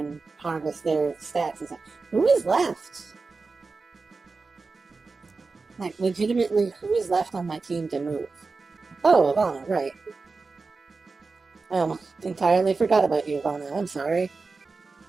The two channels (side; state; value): left; quieter; 4.1 dB